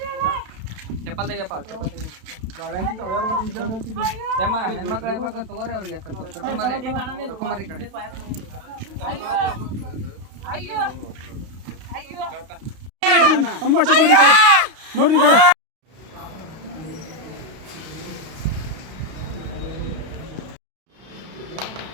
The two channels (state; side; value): late; left; 32 ms